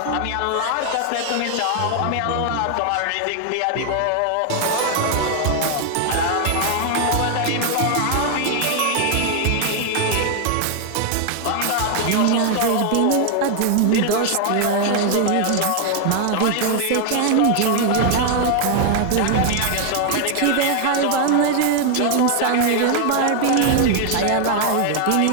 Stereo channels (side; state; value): both; different; correlation 0.00